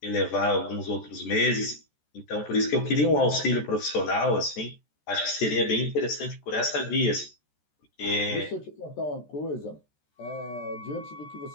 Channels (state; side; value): late; right; 14 ms